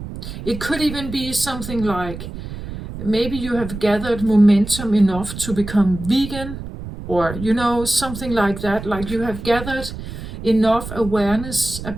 It could even be something like, maybe you have gathered momentum enough to become vegan, or, something like that. Like you have gathered enough awareness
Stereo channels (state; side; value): noise; right; rumble, 10 dB below the sound